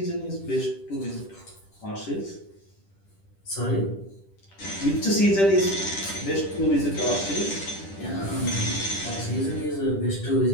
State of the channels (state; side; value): late; right; 10 ms